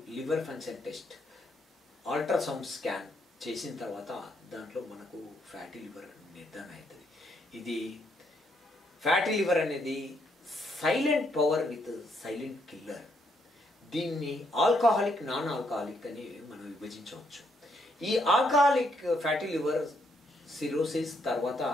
liver function test ultrasound scan చేసిన తర్వాత దాంట్లో మనకు ఫ్యాటీ లివర్ నిర్ధారణ అవుతుంది। ఇది ఫ్యాటీ లివర్ అనేది silent power with silent killer. దీన్ని ఆల్కహాలిక్ నాన్ ఆల్కహాలిక్ అని మనం విభజించవచ్చు। ఈ ఆల్కహాలిక్ ఫ్యాటీ లివర్ సిరోసిస్ తర్వాత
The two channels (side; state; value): both; normal; correlation 0.74